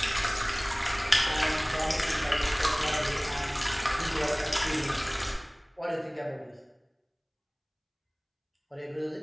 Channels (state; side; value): identical; both; correlation 1.00